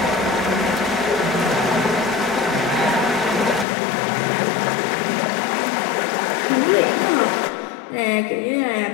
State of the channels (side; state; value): right; drops out; at 3.7 s